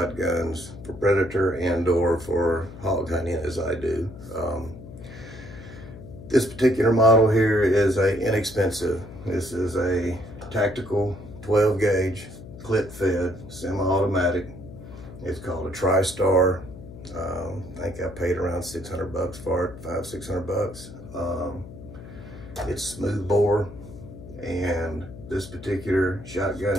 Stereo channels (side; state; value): left; noise; hum, 15 dB below the sound